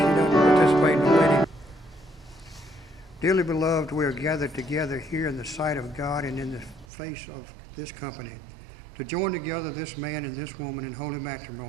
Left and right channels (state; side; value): drops out; left; at 6.9 s